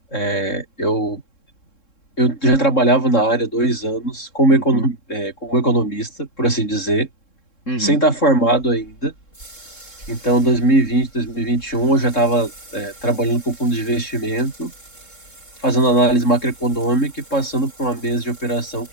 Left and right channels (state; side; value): late; right; 3.7 ms